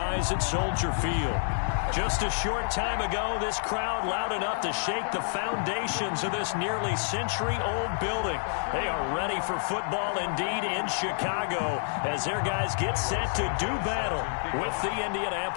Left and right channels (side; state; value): right; silent; digital silence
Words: at Soldier Field. Just a short time ago, this crowd loud enough to shake the foundations of this nearly century-old building. They are ready for football indeed in Chicago as their guys get set to do battle with the